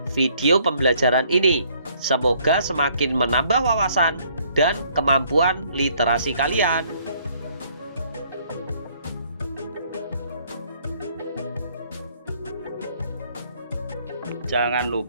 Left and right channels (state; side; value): inverted; both; correlation -0.65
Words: video pembelajaran ini. Semoga semakin menambah wawasan dan kemampuan literasi kalian. Jangan